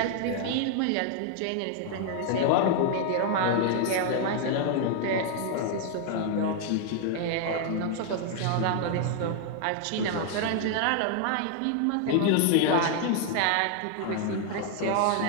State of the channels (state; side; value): different; both; correlation 0.00